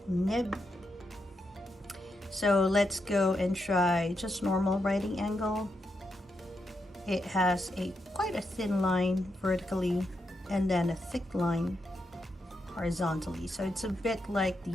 nib. So let's go and try just normal writing angle. It has quite a thin line vertically and then a thick line horizontally. So it's a bit like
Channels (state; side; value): normal; both; correlation 0.84